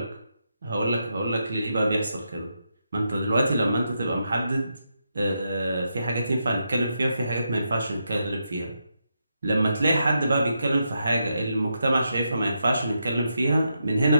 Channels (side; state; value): both; inverted; correlation -0.83